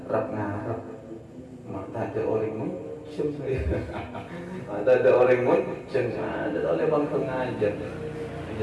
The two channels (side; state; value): both; identical; correlation 1.00